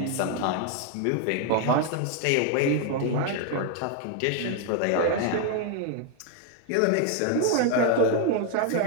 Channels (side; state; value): both; different; correlation 0.00